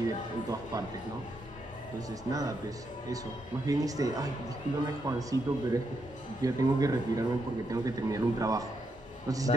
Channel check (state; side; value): normal; both; correlation 0.80